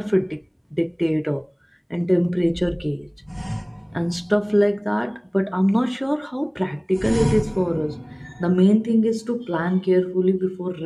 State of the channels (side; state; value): both; identical; correlation 1.00